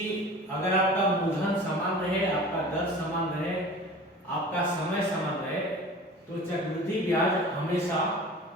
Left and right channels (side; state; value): both; normal; correlation 0.40